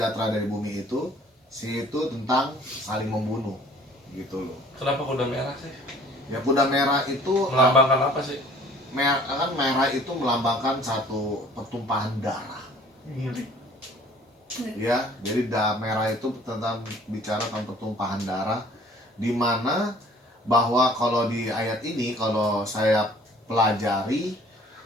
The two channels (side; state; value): both; normal; correlation 0.53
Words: dari bumi itu? Itu tentang saling membunuh, gitu loh. Kenapa kuda merah sih? Ya kuda merah itu Melambangkan apa sih? merah itu melambangkan satu pertumpahan darah. Ya, jadi merah itu tentang bicara tentang pertumpahan darah, di mana bahwa kalau di ayat ini kalau saya pelajari